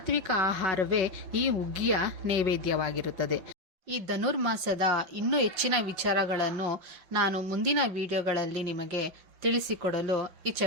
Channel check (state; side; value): late; left; 5.6 ms